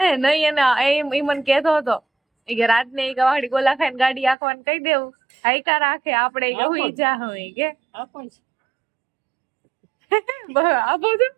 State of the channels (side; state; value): left; drops out; at 4.4 s